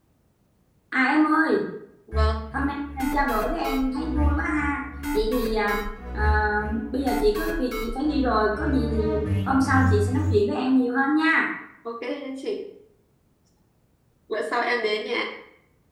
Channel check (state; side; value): identical; both; correlation 1.00